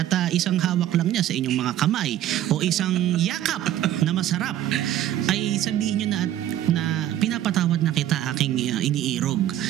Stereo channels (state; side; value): quieter; left; 12.3 dB